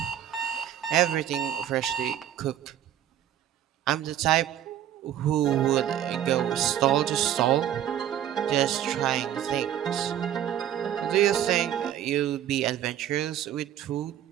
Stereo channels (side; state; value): left; quieter; 10.9 dB